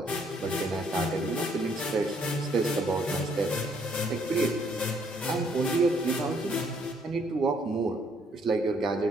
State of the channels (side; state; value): both; normal; correlation 0.67